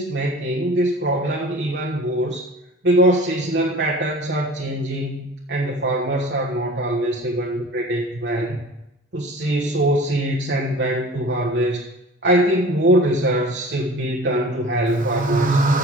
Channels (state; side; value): normal; both; correlation 0.42